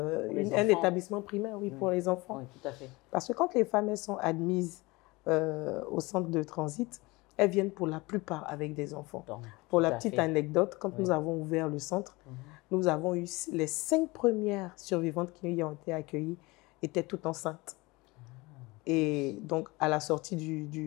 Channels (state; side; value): quieter; right; 23.2 dB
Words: établissement primaire, oui, pour les enfants. Oui, tout à fait. Parce que quand les femmes elles sont admises au centre de transit, elles viennent pour la plupart avec des enfants. Donc, pour la petite anecdote, quand nous avons ouvert le centre, nous avons eu les 5 premières survivantes qui y ont été accueillies étaient toutes enceintes. Et donc, à la sortie